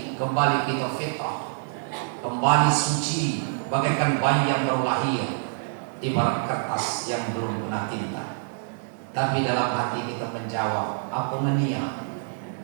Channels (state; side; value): silent; left; 61 dB below the other